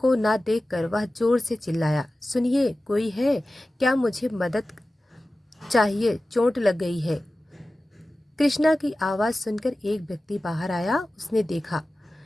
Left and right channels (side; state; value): both; normal; correlation 0.96